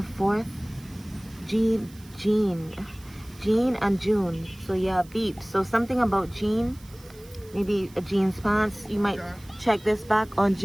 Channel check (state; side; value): noise; right; hiss, 24 dB below the sound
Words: 4th. Jean and June. So yeah, beep. So something about Jean. Maybe a jeans pants. You might check this back on